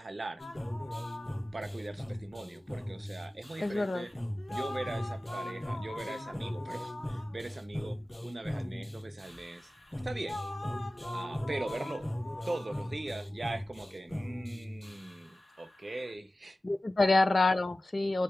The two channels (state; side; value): normal; both; correlation 0.96